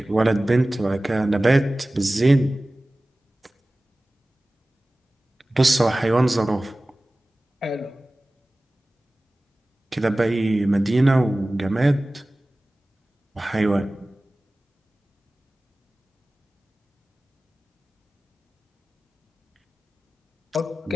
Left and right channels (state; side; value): normal; both; correlation 0.97